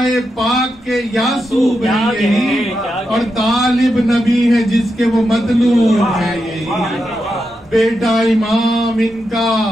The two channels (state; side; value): normal; both; correlation 0.86